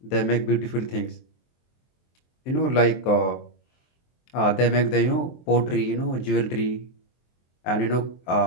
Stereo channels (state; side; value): late; right; 23 ms